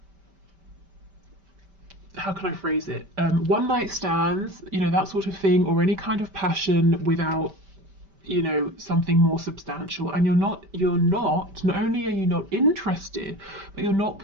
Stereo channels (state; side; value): late; left; 5.1 ms